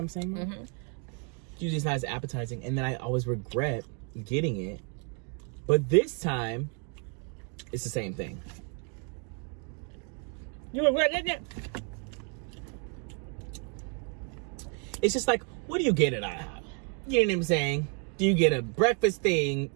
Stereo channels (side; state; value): left; quieter; 38.9 dB